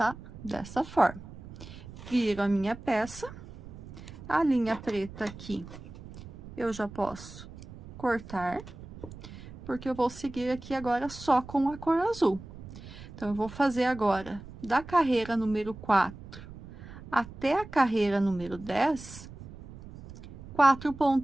dessa forma. Viro a minha peça, a linha preta aqui, eu já posso cortar, porque eu vou seguir aqui agora só com a cor azul. Então, eu vou fazer agora, da carreira número 4 até a carreira número 10, 4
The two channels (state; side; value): noise; right; rumble, 15 dB below the sound